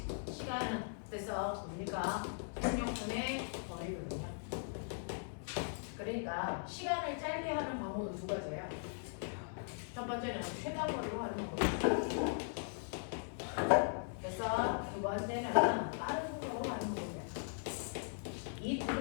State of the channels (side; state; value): right; silent; 52 dB below the other